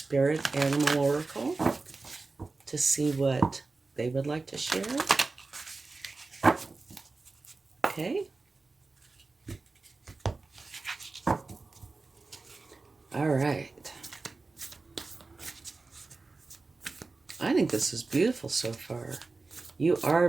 Animal Oracle to see what they would like to share. Okay. All right. I think this is beautiful so far. You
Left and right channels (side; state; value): left; quieter; 3.7 dB